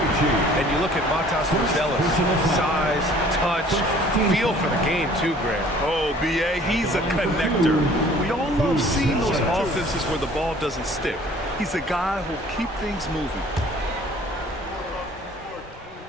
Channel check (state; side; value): normal; both; correlation 0.53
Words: And you look at Matas Buzelis. Size, touch, feel for the game too, Grant. Oh, B.A., he's a connector. We all love seeing those offenses where the ball doesn't stick. He's a guy who'll keep things moving.